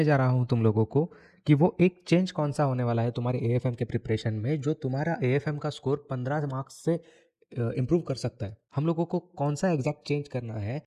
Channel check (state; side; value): identical; both; correlation 1.00